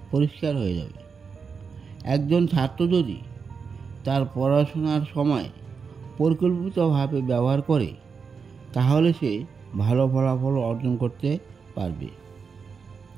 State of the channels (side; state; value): left; quieter; 5.6 dB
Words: পরিষ্কার হয়ে যাবে। একজন ছাত্র যদি তার পড়াশোনার সময় পরিকল্পিতভাবে ব্যবহার করে, তাহলে সে ভালো ফলাফল অর্জন করতে পারবে।